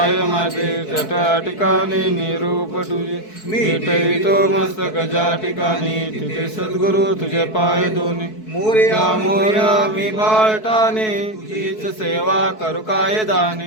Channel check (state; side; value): late; right; 4.6 ms